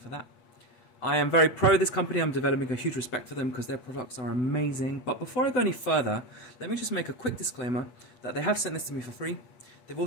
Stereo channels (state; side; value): late; right; 7.9 ms